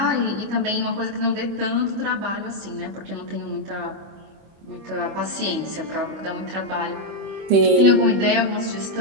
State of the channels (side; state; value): left; late; 25 ms